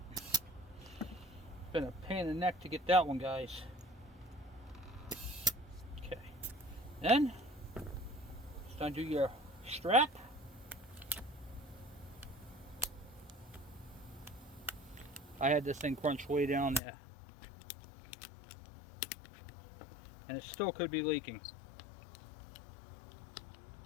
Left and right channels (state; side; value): drops out; right; at 16.8 s